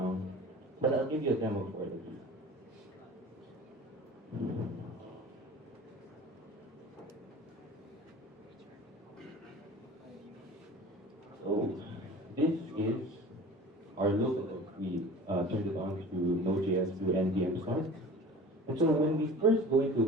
but I'll give you a demo for it. So this is our local. We turned it on through Node.js through NPM start. And so when we first go into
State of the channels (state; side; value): normal; both; correlation 0.40